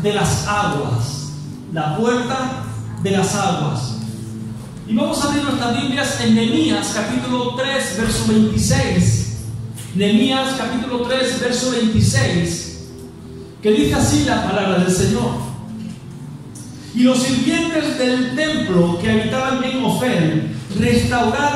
de las aguas. La puerta de las aguas. Y vamos a abrir nuestras Biblias en Nehemías capítulo 3, verso 26. Nehemías capítulo 3, verso 26, que dice así la palabra del Señor. Y los sirvientes del templo que habitaban en Ofel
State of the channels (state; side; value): identical; both; correlation 1.00